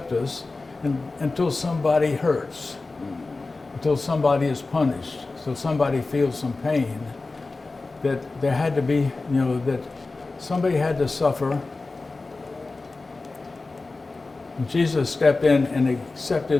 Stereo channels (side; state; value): right; quieter; 3.5 dB